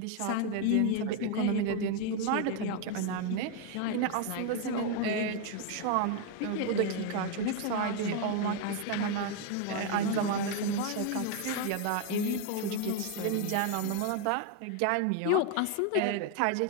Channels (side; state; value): both; different; correlation 0.01